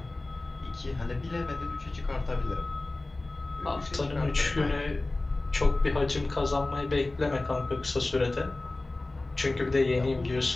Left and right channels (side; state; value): right; quieter; 3.0 dB